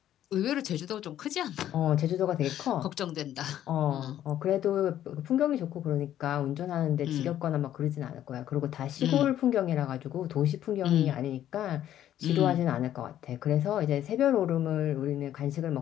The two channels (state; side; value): quieter; right; 11.7 dB